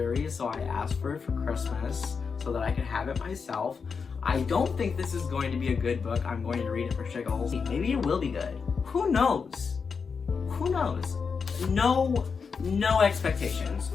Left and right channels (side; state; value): right; quieter; 5.6 dB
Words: so I asked for it for Christmas so that I could have it myself. I don't think this is going to be a good book. I'm going to read it for shiggles. Maybe it will be good. Who knows? Who knows? No expectations.